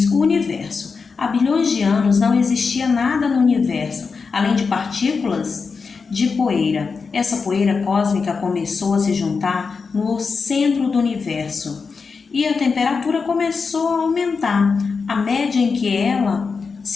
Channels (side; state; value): right; quieter; 5.0 dB